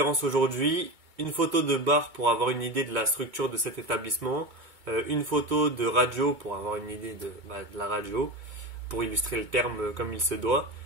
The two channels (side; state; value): left; late; 2.2 ms